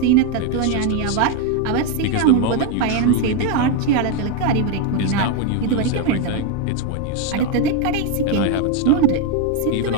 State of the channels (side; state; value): both; different; correlation 0.01